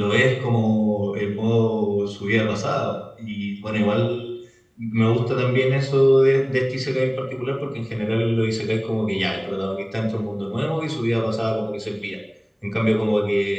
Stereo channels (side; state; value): both; identical; correlation 1.00